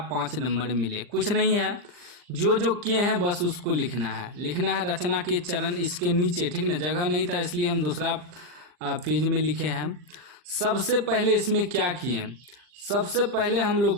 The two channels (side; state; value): left; late; 40 ms